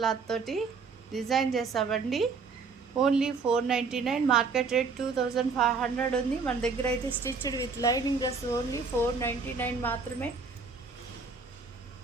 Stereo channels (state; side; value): quieter; left; 4.8 dB